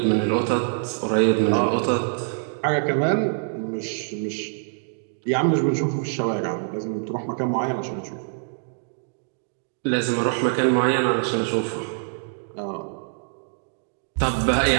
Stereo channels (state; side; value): silent; left; digital silence